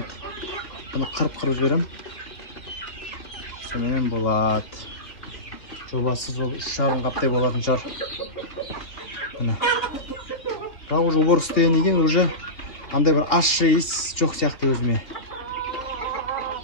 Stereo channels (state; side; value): late; right; 3.1 ms